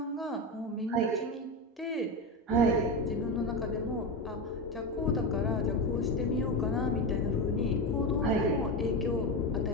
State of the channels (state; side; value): normal; both; correlation 0.17